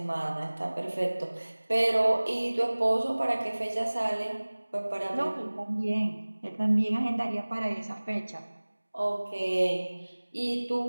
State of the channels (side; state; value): both; inverted; correlation -1.00